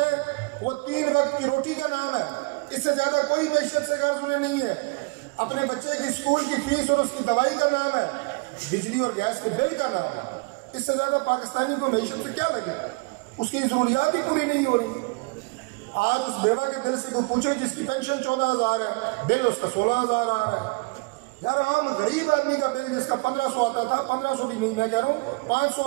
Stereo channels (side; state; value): left; quieter; 28.4 dB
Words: وہ 3 وقت کی روٹی کا نام ہے. اس سے زیادہ کوئی معیشت سے غرض انہیں نہیں ہے. اپنے بچے کی اسکول کی فیس اور اس کی دوائی کا نام ہے, بجلی اور گیس کے بل کا نام ہے. اس سے زیادہ پاکستانی کو معیشت سے کیا لگے, اس کی ضروریات ہی پوری نہیں ہو رہی. آج اس بیوہ کے دل سے کوئی پوچھے جس کی پینشن 14,000 ہے, بل اس کا 16,000 آ رہا ہے. یار عام غریب آدمی کا بل جس کا 1500 آتا تھا, 1500 بھی نہیں میں کہہ رہا ہوں, 500